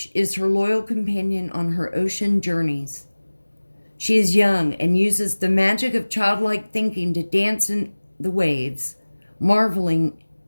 is her loyal companion on her ocean journeys. She is young and uses the magic of childlike thinking to dance in the waves, marveling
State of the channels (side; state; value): both; inverted; correlation -1.00